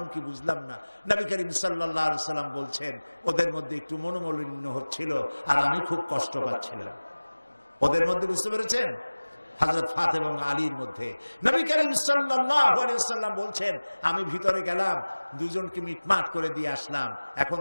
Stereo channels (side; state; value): both; inverted; correlation -1.00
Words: কি বুঝলাম না নবী করিম সাল্লাল্লাহু আলাইহি ওয়াসাল্লাম বলছেন ওদের মধ্যে একটু মনোমালিন্য হচ্ছিল আর আমি খুব কষ্ট পাচ্ছিলাম ওদের মধ্যে বুঝতে পেরেছেন হযরত ফাতেমা এবং আলীর মধ্যে নবী করিম সাল্লাল্লাহু আলাইহি ওয়াসাল্লাম বলছেন আমি ভিতরে গেলাম দুজনকে মিটমাট করে দিয়ে আসলাম এখন